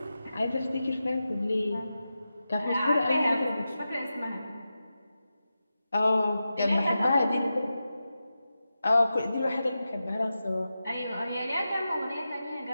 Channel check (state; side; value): inverted; both; correlation -0.91